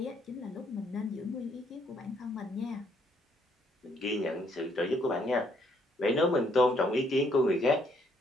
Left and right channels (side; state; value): both; normal; correlation 0.69